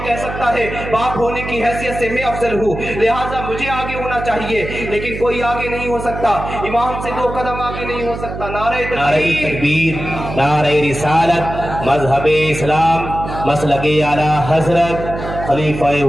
کہہ سکتا ہے باپ ہونے کی حیثیت سے میں افضل ہوں لہٰذا مجھے آگے ہونا چاہیے، لیکن کوئی آگے نہیں ہو سکتا، امام سے 2 قدم آگے نہیں ہو سکتا۔ نعرہ تکبیر، نعرہ رسالت، مذہب اسلام، مسلک اعلیٰ حضرت خلیفہ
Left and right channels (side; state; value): right; noise; hum, 8 dB below the sound